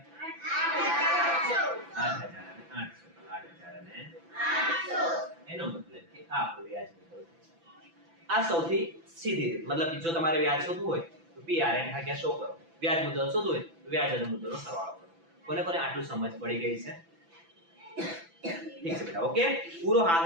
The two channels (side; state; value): left; late; 6.0 ms